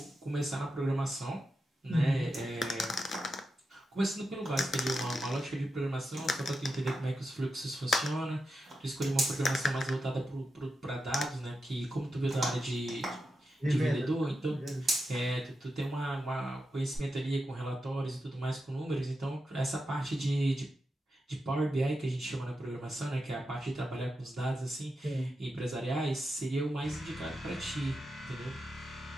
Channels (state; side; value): normal; both; correlation 0.88